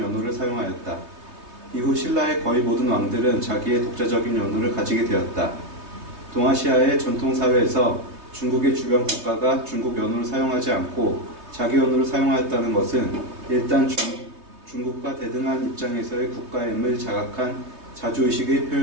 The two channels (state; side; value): late; left; 3.2 ms